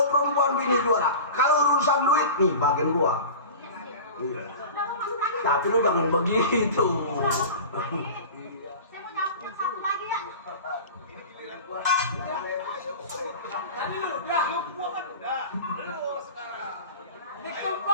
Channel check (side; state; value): both; inverted; correlation -0.34